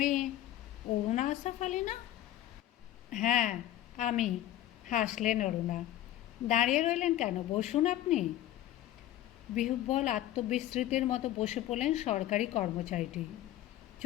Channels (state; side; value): quieter; right; 13.6 dB